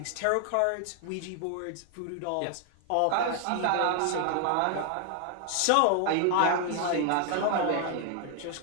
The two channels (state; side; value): different; both; correlation 0.00